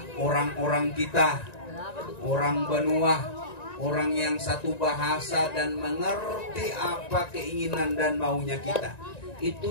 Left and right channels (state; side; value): late; right; 1.9 ms